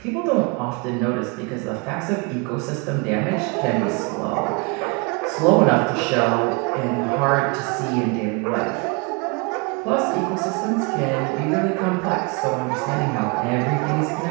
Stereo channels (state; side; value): quieter; left; 30.3 dB